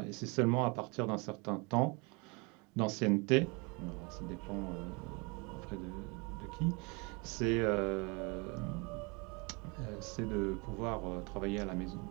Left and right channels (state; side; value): quieter; left; 30.0 dB